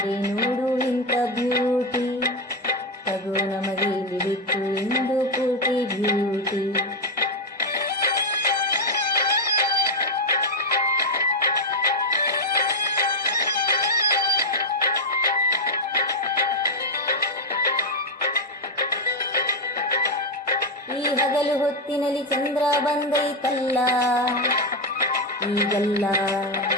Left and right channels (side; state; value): both; normal; correlation 0.04